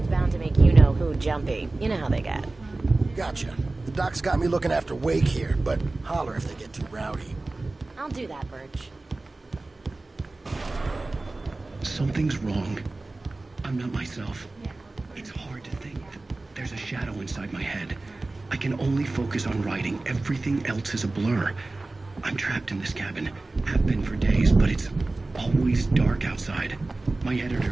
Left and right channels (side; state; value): left; quieter; 3.1 dB